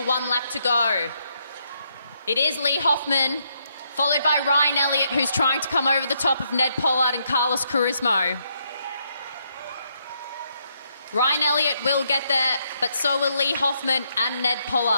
1 lap to go. It is Lee Hoffman, followed by Ryan Elliott, who's trying to come over the top of Ned Pollard and Carlos Charisma. Ryan Elliott will get there, but so will Lee Hoffman and Ned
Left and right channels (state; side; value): inverted; both; correlation -0.76